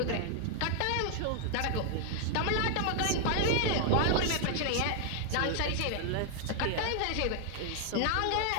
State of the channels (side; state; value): both; different; correlation 0.00